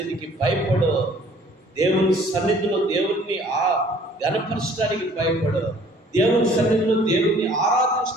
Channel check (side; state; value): both; normal; correlation 0.55